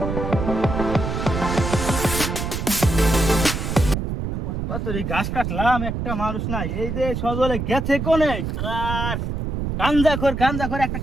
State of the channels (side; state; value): right; noise; rumble, 3 dB below the sound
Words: ঘাস কাটলাম একটা মানুষ নাই এই যে সজলে গেছে কোনে আর গাঞ্জা খোর একটা